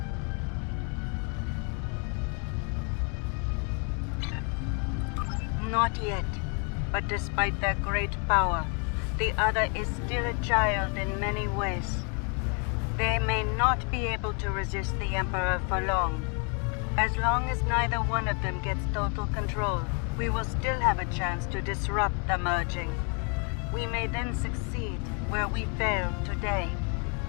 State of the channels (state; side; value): quieter; right; 37.2 dB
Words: Not yet, but despite their great power, the other is still a child in many ways. They may not be able to resist the Emperor for long. As long as neither one of them gets total control, we will still have a chance to disrupt the merging. We may then succeed where we failed today.